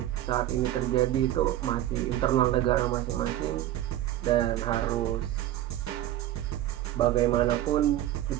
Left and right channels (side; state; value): left; quieter; 13.6 dB